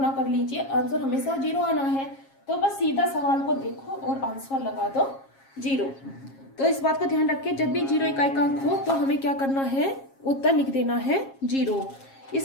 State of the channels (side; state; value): right; late; 7.4 ms